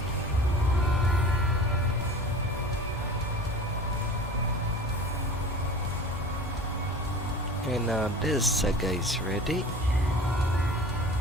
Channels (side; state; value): both; normal; correlation 0.39